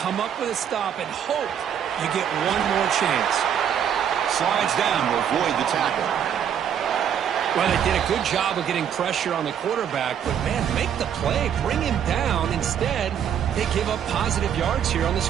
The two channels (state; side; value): quieter; left; 8.8 dB